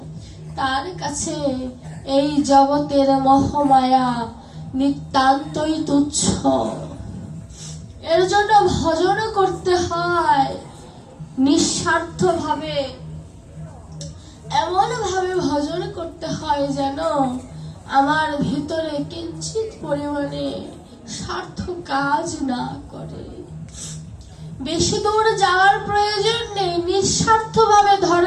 তার কাছে এই জগতের মোহমায়া নিতান্তই তুচ্ছ। এর জন্য ভজন করতে হয় নিঃস্বার্থ ভাবে, এমন ভাবে ভজন করতে হয় যেন আমার ভিতরে কিঞ্চিত পরিমাণে স্বার্থ কাজ না করে। বেশি দূর যাওয়ার প্রয়োজন নেই, নিঃস্বার্থ ভাবে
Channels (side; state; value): both; identical; correlation 1.00